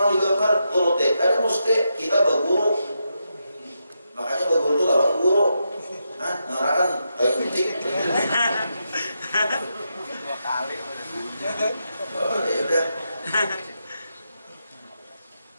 digambar turut ada mesti kita berguru. Makanya berguru itu lawan guru. Ngarakan kayak penting. 2 kali. Oh, ya udah.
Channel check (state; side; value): inverted; both; correlation -0.84